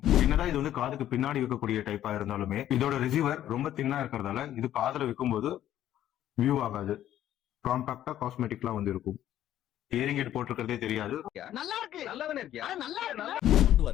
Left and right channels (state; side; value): quieter; right; 12.0 dB